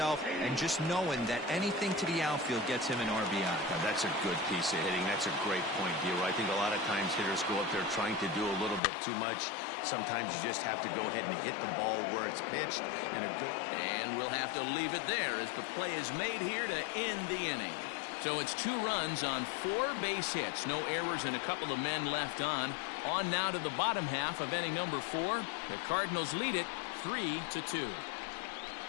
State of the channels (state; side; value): drops out; right; at 8.8 s